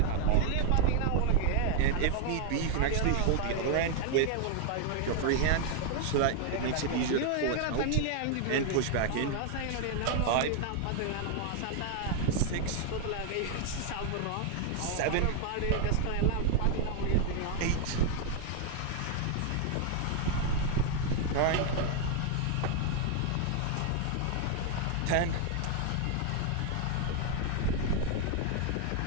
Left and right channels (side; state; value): both; different; correlation 0.00